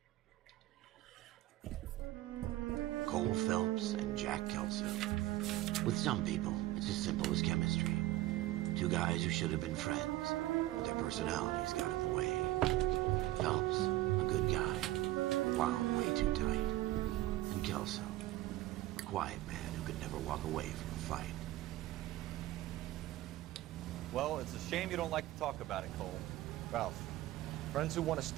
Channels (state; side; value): quieter; left; 16.3 dB